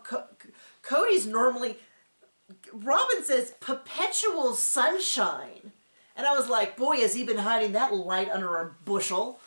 Cody's normally... Robin says, perpetual sunshine. And I was like, boy, has he been hiding that light under a bushel.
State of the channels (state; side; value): inverted; both; correlation -1.00